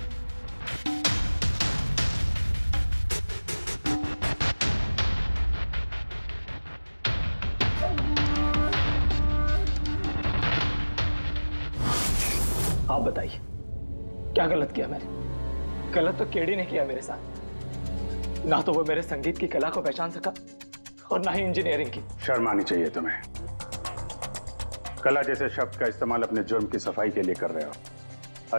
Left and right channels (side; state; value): both; inverted; correlation -1.00